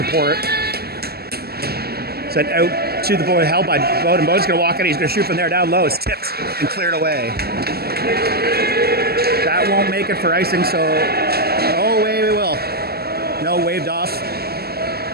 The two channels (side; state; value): left; late; 0.46 ms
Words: Sent out to the boy, held by Bowden. Bowden's going to walk in. He's going to shoot from there down low. It's tipped and cleared away. That won't make it for icing, so... Oh, wait, we will. No, waved off.